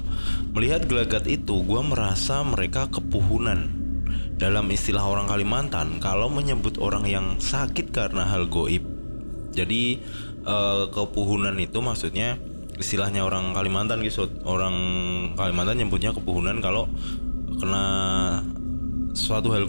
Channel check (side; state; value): both; inverted; correlation -1.00